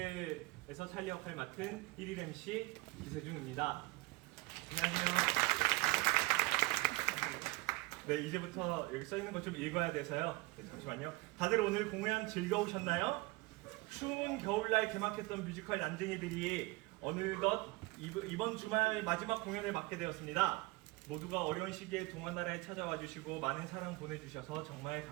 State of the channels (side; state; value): left; quieter; 22.6 dB